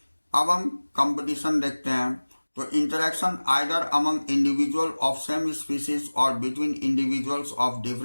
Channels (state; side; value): inverted; both; correlation -1.00